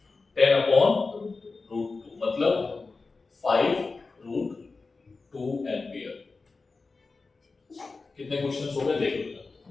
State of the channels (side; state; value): right; quieter; 4.0 dB